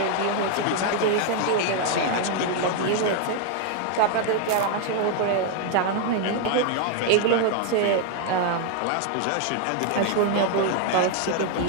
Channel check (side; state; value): both; different; correlation 0.00